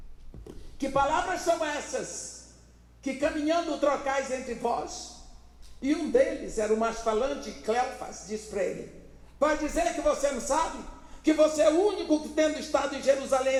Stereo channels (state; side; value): identical; both; correlation 1.00